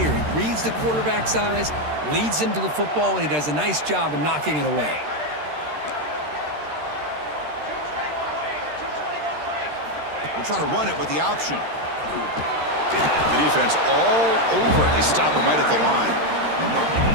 He reads the quarterback's eyes, leads him to the football, and he does a nice job of knocking it away. We'll try to run it with the option. The defense all over it. They stop him right at the line.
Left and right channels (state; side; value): late; left; 13 ms